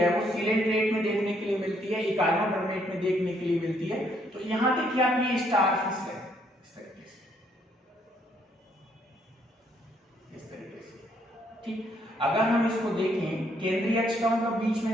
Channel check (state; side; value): normal; both; correlation 0.70